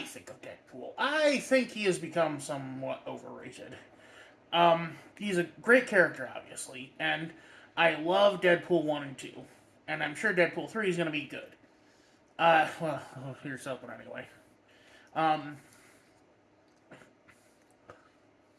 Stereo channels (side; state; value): both; identical; correlation 1.00